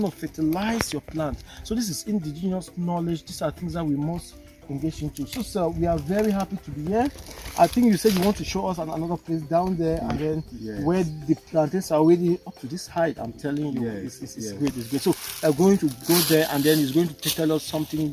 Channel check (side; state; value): both; identical; correlation 1.00